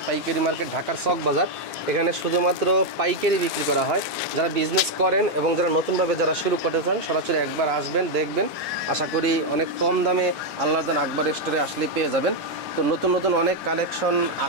পাইকারি মার্কেট ঢাকার চক বাজার। এখানে শুধুমাত্র পাইকারি বিক্রি করা হয়। যারা বিজনেস করেন এবং যারা নতুনভাবে যারা শুরু করতে চান সরাসরি একবার আসবেন, দেখবেন। আশা করি অনেক কম দামে আল্লাহর দান আকবর স্টোরে আসলেই পেয়ে যাবেন। তো নতুন নতুন অনেক কালেকশন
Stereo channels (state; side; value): normal; both; correlation 0.01